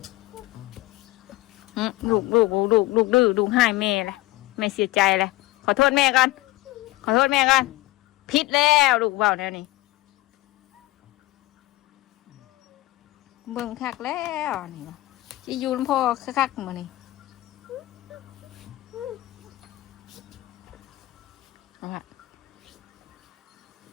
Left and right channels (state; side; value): quieter; right; 18.3 dB